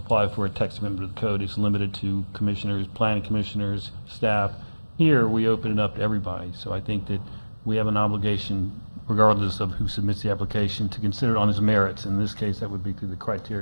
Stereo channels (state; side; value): inverted; both; correlation -1.00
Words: for a text amendment of the code. It's limited to commissioners, planning commissioners, staff. Here, we open it up to everybody. So I think that we have an obligation, regardless of who submits the application, to consider it on its merits. In this case, that would be through the